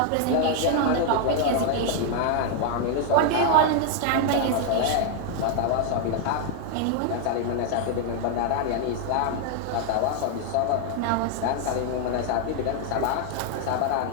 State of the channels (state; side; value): different; both; correlation 0.00